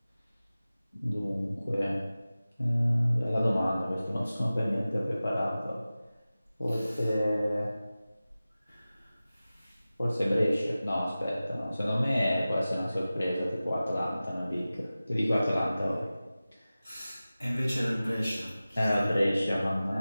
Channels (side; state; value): both; inverted; correlation -0.96